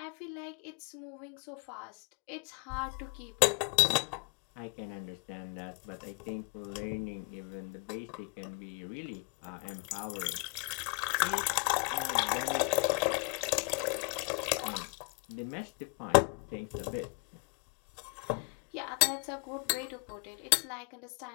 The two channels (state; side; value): quieter; right; 33.5 dB